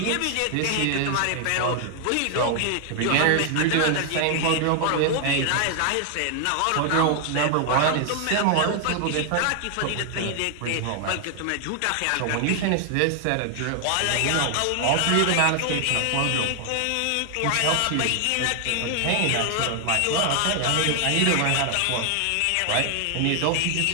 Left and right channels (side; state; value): both; different; correlation 0.00